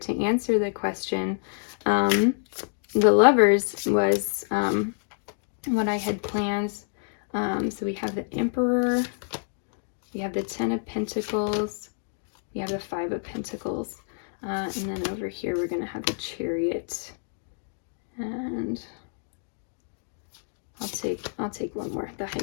answer the question. The Lovers was what I had planned. So we have the Emperor, we have the Ten of Pentacles, we have the Five of Pentacles, and then over here we're going to have the Chariot, and I'll take one more, the High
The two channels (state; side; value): silent; right; digital silence